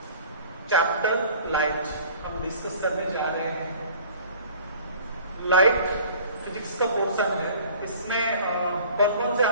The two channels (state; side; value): inverted; both; correlation -0.48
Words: चैप्टर लाइट हम डिस्कस करने जा रहे हैं। लाइट फिजिक्स का पोर्शन है। इसमें कौन से